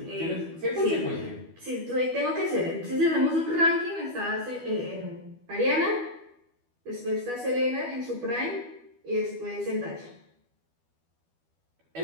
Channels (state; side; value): late; left; 12 ms